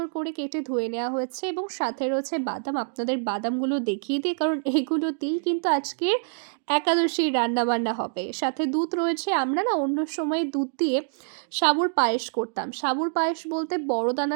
করে কেটে ধুয়ে নেওয়া হয়েছে, এবং সাথে রয়েছে বাদাম। আপনাদের বাদামগুলো দেখিয়ে দিই, কারণ এগুলোতেই কিন্তু আজকের একাদশীর রান্নাবান্না হবে। সাথে দুধ রয়েছে। আমরা না অন্য সময় দুধ দিয়ে সাবুর পায়েস করতাম। সাবুর পায়েস বলতে বড়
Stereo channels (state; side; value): silent; left; digital silence